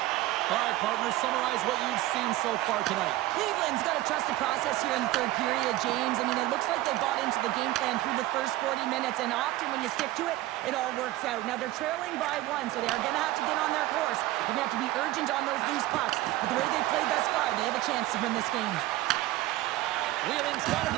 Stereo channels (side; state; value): left; quieter; 16.5 dB